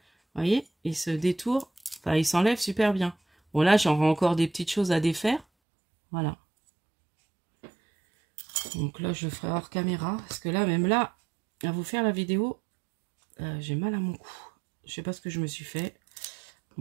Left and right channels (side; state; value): left; drops out; at 5.5 s